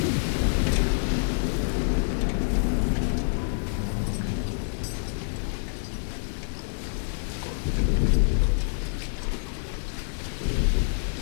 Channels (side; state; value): right; silent; digital silence